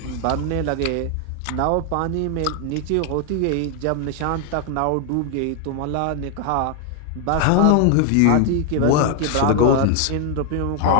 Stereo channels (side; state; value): both; different; correlation 0.00